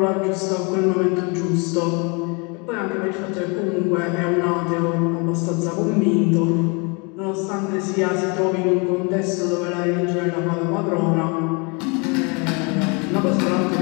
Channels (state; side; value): quieter; right; 31.5 dB